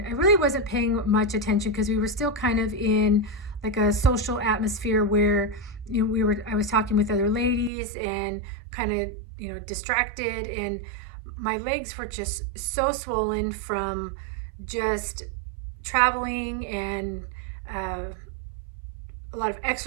I really wasn't paying much attention because we were still kind of in like a social atmosphere where I was talking with other ladies and kind of distracted, and my legs were just so swollen from just traveling and a lot of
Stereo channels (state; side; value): drops out; left; at 7.7 s